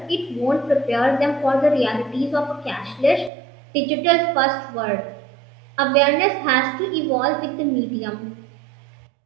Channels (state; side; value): drops out; left; at 3.3 s